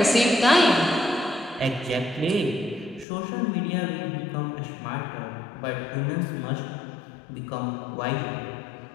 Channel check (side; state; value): right; drops out; at 3.1 s